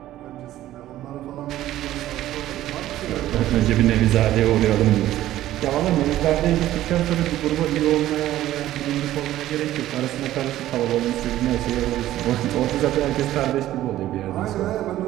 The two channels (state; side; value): quieter; left; 14.0 dB